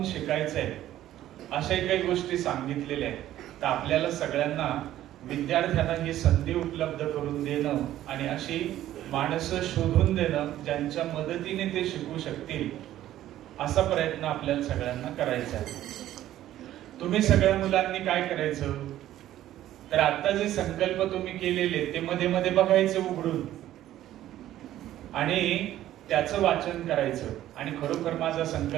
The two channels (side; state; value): left; quieter; 13.2 dB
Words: शिकायचंय, अशाही काही गोष्टी सांगितलेल्या आहेत. तर आपल्याला सगळ्यांना, विद्यार्थ्यांना ही संधी उपलब्ध करून देणं आणि अशी माणसं शोधून देणं ज्यांच्या मदतीने ते शिकू शकतील, असा प्रयत्न आपल्याला सगळ्यांना करायचा आहे. तुम्ही सगळ्या मुलांनी काय करायचं, तर आता जे संकल्प तुम्ही केलेले ते मध्ये मध्ये बघायचे उघडून आणि त्याचं वाचन करायचं आणि खरोखर माझा